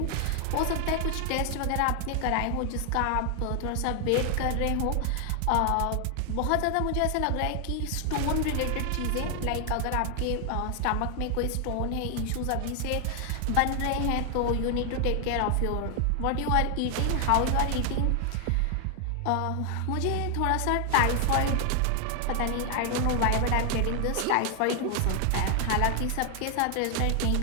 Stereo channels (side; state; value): both; different; correlation 0.00